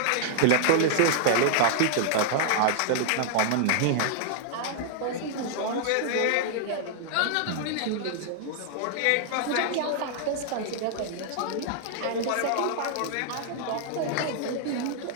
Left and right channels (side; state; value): both; different; correlation -0.01